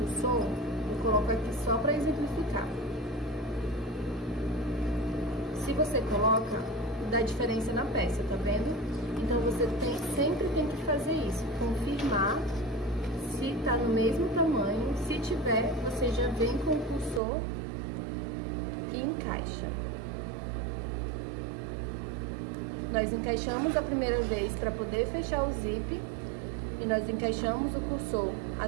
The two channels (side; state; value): left; drops out; at 17.2 s